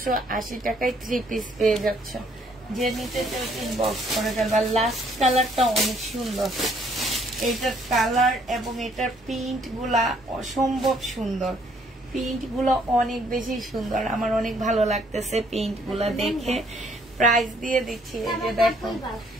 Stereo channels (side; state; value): both; normal; correlation 0.65